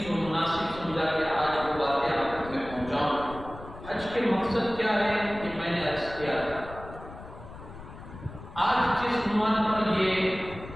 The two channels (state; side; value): noise; left; rumble, 15 dB below the sound